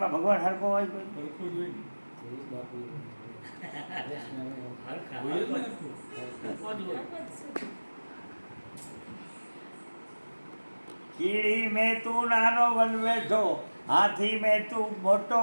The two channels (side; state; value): both; inverted; correlation -1.00